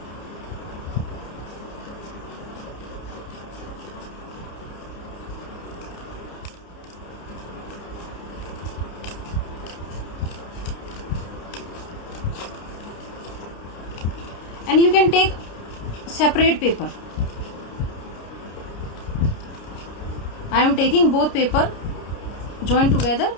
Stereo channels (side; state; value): right; late; 30 ms